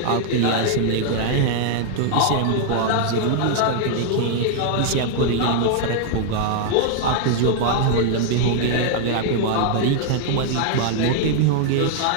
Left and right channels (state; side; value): different; both; correlation 0.00